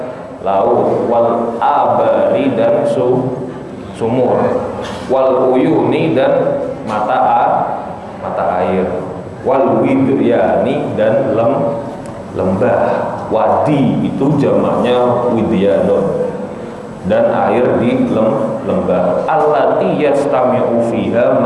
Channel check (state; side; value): identical; both; correlation 1.00